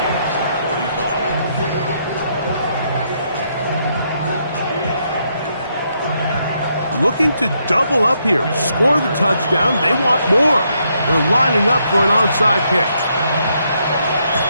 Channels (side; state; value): both; inverted; correlation -0.76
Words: Looking to double up here. Score the touchdown. They want more. They're lining up for an onside kick.